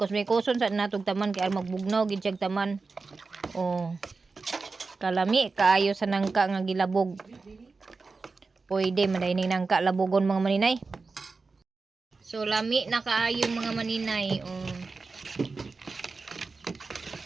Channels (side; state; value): left; quieter; 4.1 dB